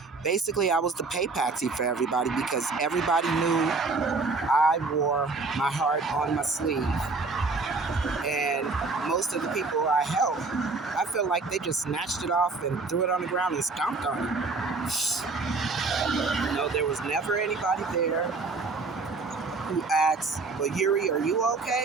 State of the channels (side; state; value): left; quieter; 4.0 dB